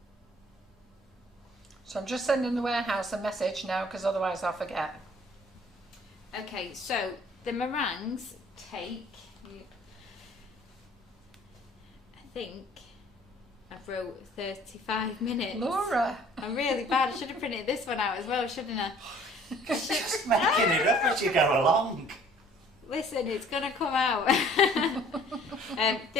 So I'm just sending the warehouse a message now, because otherwise I'll forget. Okay, so the meringues take, I think I wrote 35 minutes. Laura! I'm really bad. I should have printed this one out as well, shouldn't I? Just making it up as you go along. Listen, it's going to come out.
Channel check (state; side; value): normal; both; correlation 0.55